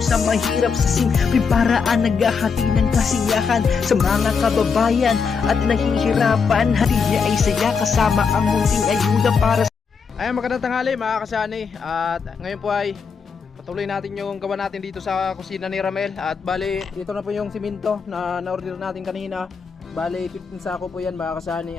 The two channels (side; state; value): right; quieter; 5.7 dB